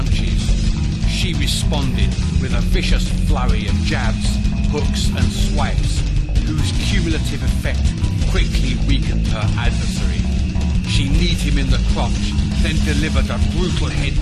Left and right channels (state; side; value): identical; both; correlation 1.00